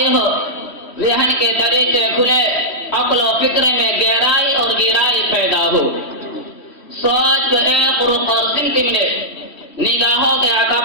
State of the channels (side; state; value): right; late; 3.1 ms